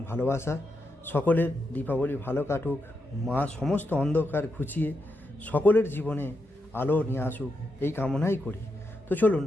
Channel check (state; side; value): normal; both; correlation 0.84